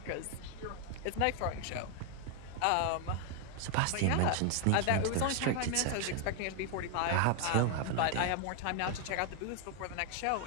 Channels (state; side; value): different; both; correlation 0.00